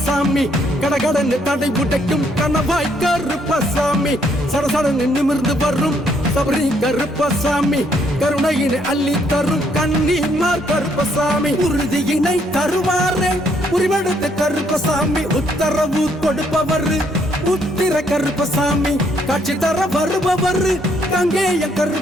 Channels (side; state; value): both; normal; correlation 0.70